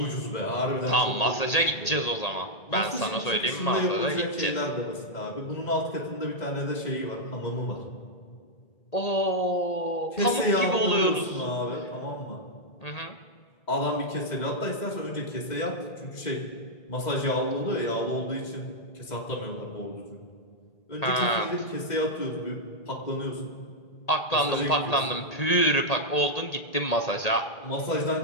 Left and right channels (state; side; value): late; right; 1.8 ms